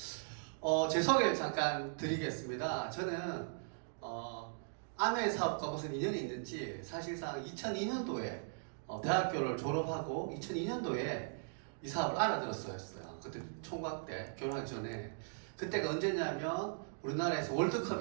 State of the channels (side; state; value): left; silent; digital silence